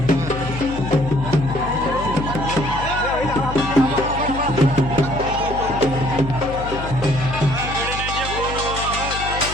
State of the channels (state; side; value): noise; left; hum, 8 dB below the sound